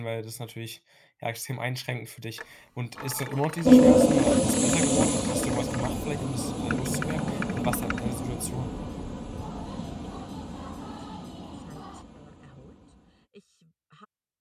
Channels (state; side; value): identical; both; correlation 1.00